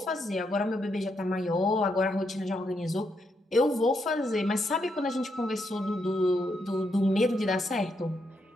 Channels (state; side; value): normal; both; correlation 0.79